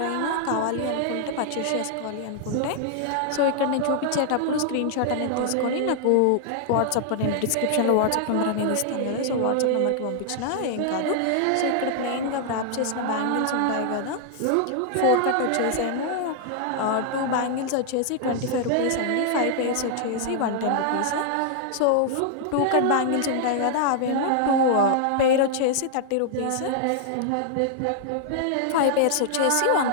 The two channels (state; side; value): different; both; correlation -0.01